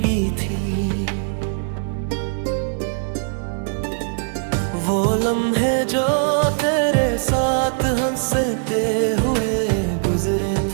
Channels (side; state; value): left; silent; 65 dB below the other